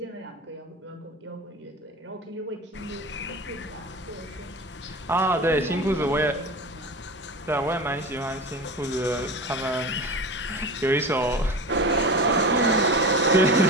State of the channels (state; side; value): normal; both; correlation 0.30